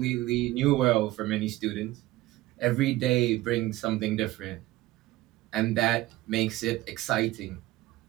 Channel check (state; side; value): quieter; left; 17.4 dB